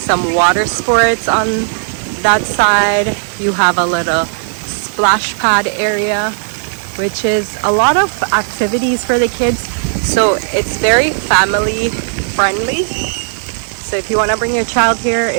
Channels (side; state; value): left; silent; digital silence